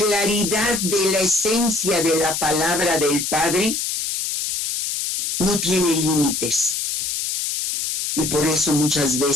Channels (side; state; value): left; noise; hiss, 2 dB below the sound